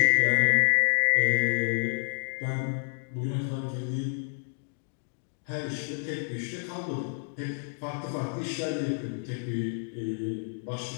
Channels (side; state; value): right; silent; digital silence